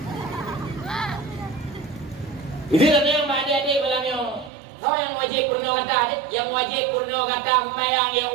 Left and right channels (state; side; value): drops out; left; at 4.5 s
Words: Itu ada yang Pak adik-adik melayani. Kau yang wajib pernah kata adik, yang wajib pernah kata sembahyang, yang